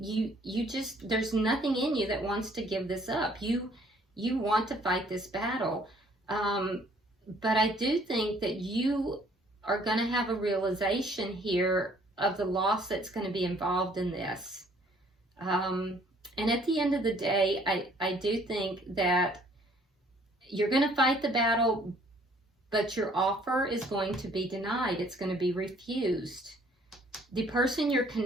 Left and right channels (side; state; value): both; normal; correlation 0.60